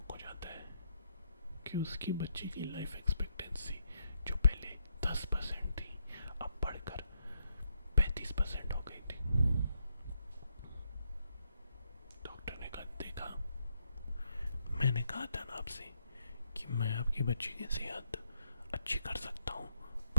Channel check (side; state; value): both; inverted; correlation -0.78